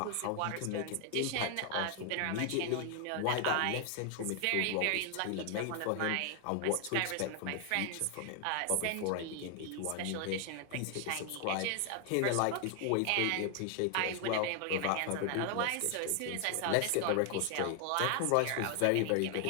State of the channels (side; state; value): both; different; correlation 0.00